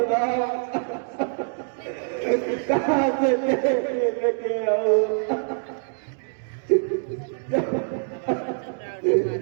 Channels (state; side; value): silent; left; digital silence